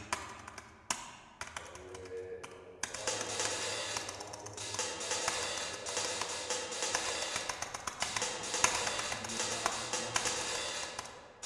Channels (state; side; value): identical; both; correlation 1.00